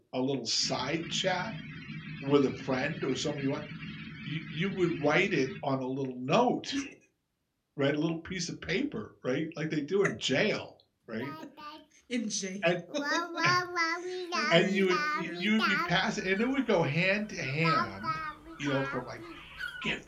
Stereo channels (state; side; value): identical; both; correlation 1.00